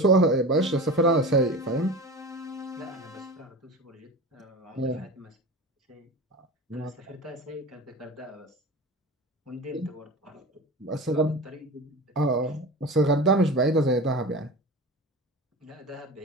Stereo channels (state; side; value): normal; both; correlation 0.31